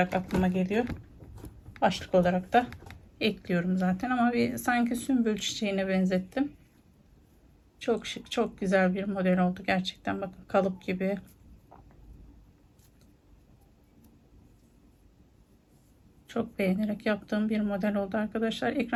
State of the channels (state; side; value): identical; both; correlation 1.00